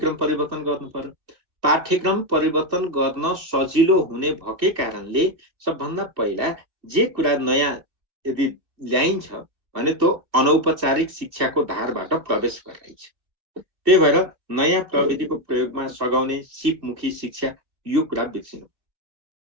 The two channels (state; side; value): late; left; 2.5 ms